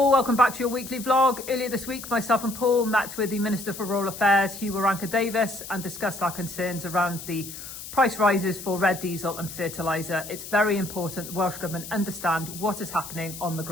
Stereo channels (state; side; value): noise; left; hiss, 11 dB below the sound